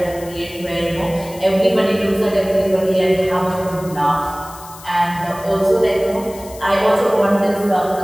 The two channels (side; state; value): left; noise; hiss, 18 dB below the sound